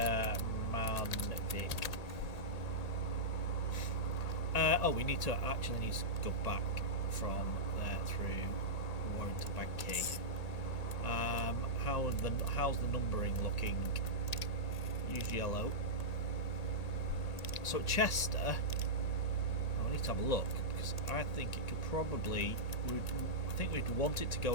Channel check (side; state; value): right; late; 1.8 ms